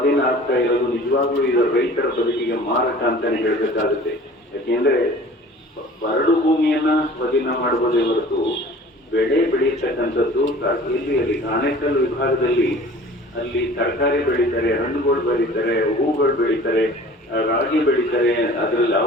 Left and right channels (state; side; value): normal; both; correlation 0.45